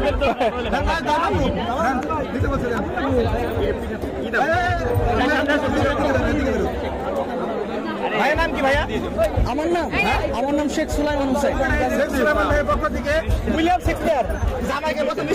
ভাইয়ের নাম কি ভাইয়া? আমার নাম শেখ সুলাইমান হোসেন। শেখ সুলাইমান ভাইয়ের পক্ষ থেকে উইলিয়াম শেক্সপিয়ার জামাইকে প্রথম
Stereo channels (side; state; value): both; identical; correlation 1.00